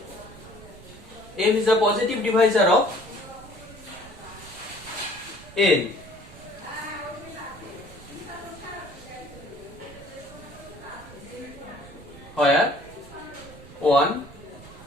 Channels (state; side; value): noise; right; rumble, 18 dB below the sound